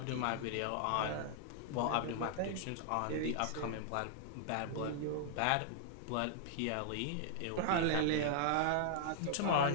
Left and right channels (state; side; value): different; both; correlation -0.01